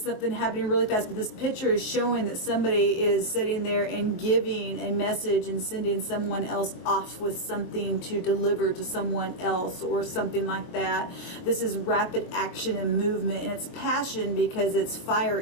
happening really fast, but this picture is showing that somebody is sitting there and giving a message and sending someone else off with something to deliver to someone else, or something like that. This is rapid action and movement, and it's passion because it's fire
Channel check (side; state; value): right; late; 23 ms